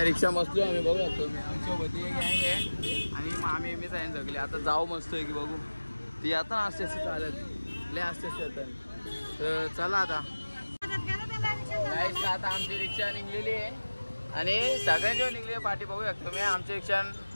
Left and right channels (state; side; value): inverted; both; correlation -1.00